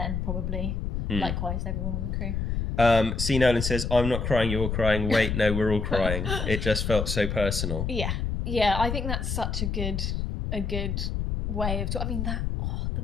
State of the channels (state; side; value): noise; left; rumble, 1 dB below the sound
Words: probably likewise everyone on the crew. C. Nolan says, "I'm not crying, you're crying. Wait, no, we're all crying. It just felt so personal." Yeah, I think that's such a good way of I mean, the